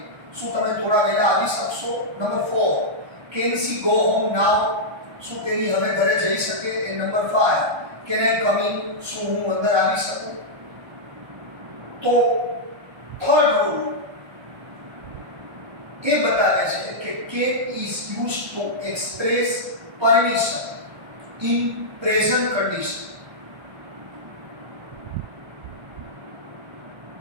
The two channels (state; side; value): late; left; 1.3 ms